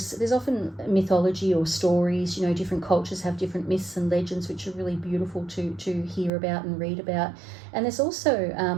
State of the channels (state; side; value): drops out; left; at 6.3 s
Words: there's often mythology or stories, different cultures have different myths and legends, which are really beautiful to hear about and read about. And there's